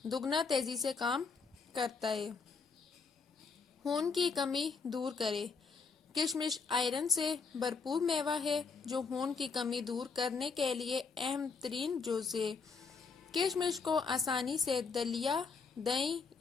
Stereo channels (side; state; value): right; quieter; 5.0 dB